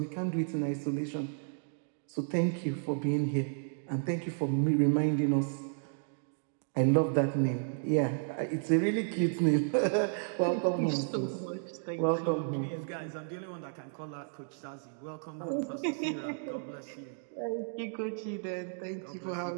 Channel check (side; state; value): left; silent; digital silence